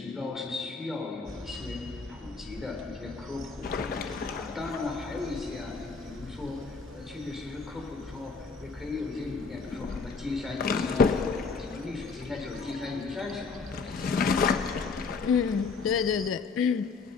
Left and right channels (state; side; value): quieter; right; 4.7 dB